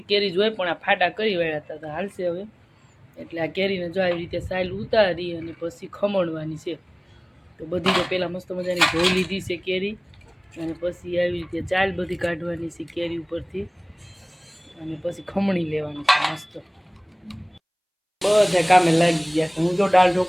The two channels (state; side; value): identical; both; correlation 1.00